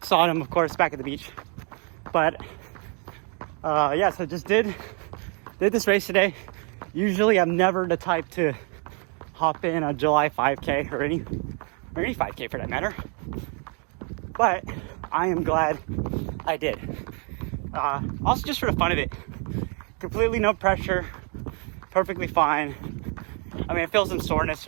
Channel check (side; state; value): left; quieter; 37.8 dB